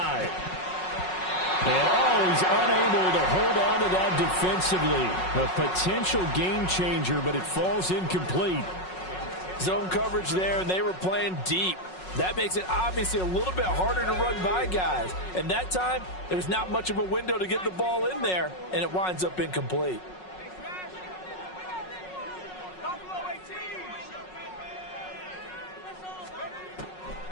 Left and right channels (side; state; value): right; late; 5.4 ms